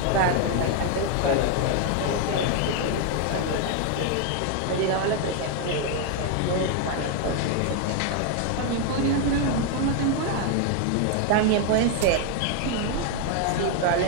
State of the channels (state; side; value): different; both; correlation 0.01